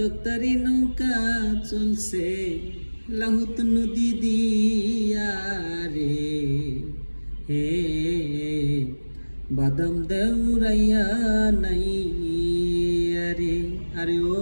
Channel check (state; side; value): inverted; both; correlation -1.00